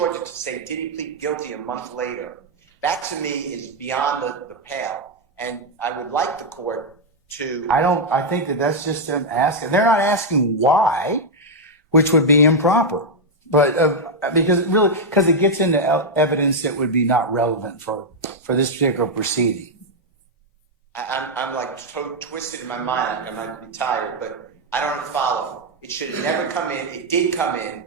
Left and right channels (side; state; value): both; normal; correlation -0.01